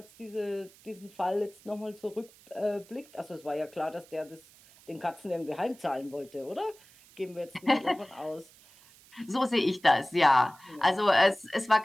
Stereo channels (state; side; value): noise; right; hiss, 25 dB below the sound